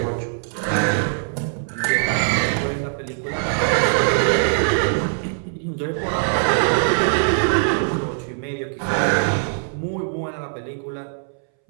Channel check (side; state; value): left; silent; 63 dB below the other